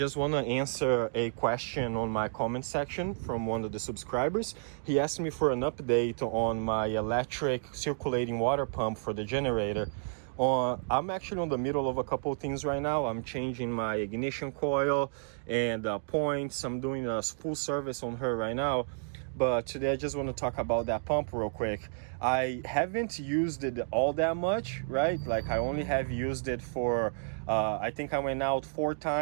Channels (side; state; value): left; silent; digital silence